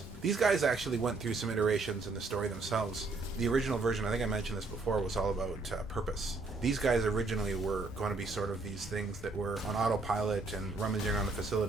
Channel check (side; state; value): left; quieter; 3.6 dB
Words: These guys actually went through some iterations in the story themselves. The original version, I think I mentioned this before, was all about purpose. These guys originally were going to be sort of these things that were on autopilot and rummaging around the